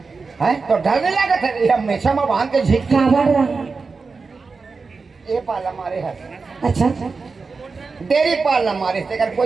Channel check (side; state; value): left; quieter; 4.5 dB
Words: है तो डर नहीं लगा था ये हमेशा में बांध के झीक क्या बढ़ रहा ये पाला मारे हाथ अच्छा डेरी पालना मारे से कर